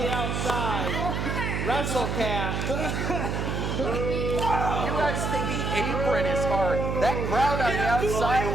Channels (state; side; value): noise; right; hum, 1 dB below the sound